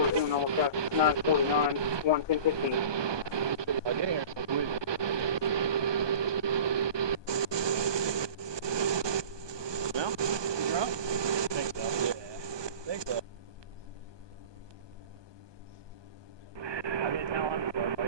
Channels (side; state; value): left; late; 1.2 ms